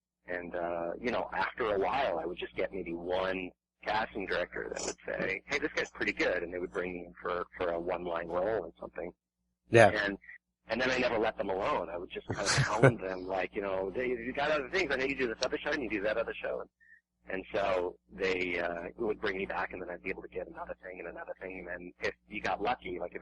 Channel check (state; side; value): identical; both; correlation 1.00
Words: and after a while I would just get maybe one casting director that would say, hey, this guy's pretty good, and they would bring me in for a one-line role or something. Yeah. And then I never let them alone. I would just kind of hound them, you got other things. I know you do this other show and you do that other show. And so they would bring me back, and then I'd be able to get another thing and another thing. And then if you got lucky,